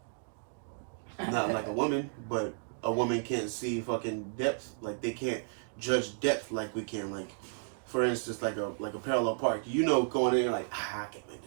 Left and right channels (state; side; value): silent; left; digital silence